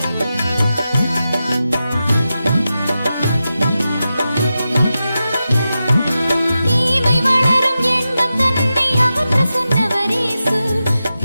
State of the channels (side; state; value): both; inverted; correlation -0.91